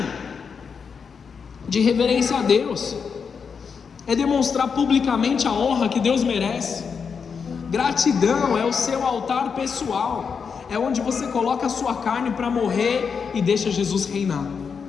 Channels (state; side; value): quieter; right; 6.0 dB